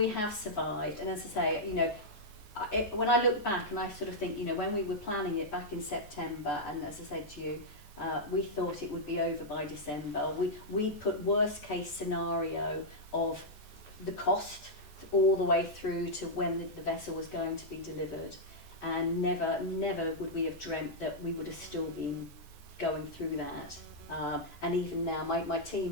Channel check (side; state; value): right; late; 14 ms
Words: have survived, and as I say, when I look back and I sort of think, when we were planning it back in September, and as I said to you, we thought it would be over by December. We put worst case scenario of the cost all the way through to when the vessel was going to be delivered, and never would we have dreamt that we would have still been going through that. And even now, my